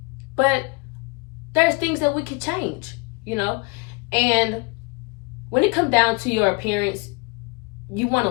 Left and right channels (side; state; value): right; quieter; 29.6 dB